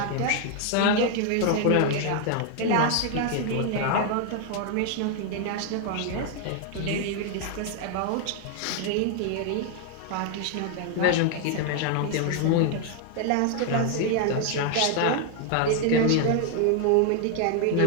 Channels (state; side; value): different; both; correlation 0.00